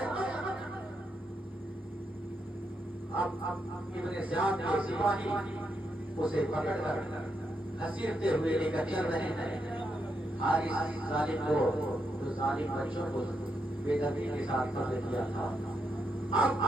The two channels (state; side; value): normal; both; correlation 0.81